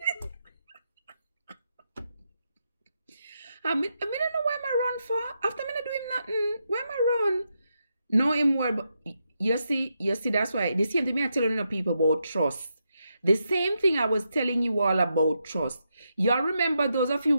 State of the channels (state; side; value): inverted; both; correlation -0.83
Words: I don't know why I run for. After me not do him nothing. Why am I run? No him word, but you see, that's why the same thing I telling you people about trust. The same thing I was telling you all about trust. Y'all remember those of you